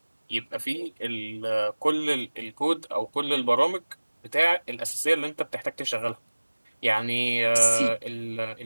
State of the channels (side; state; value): both; inverted; correlation -1.00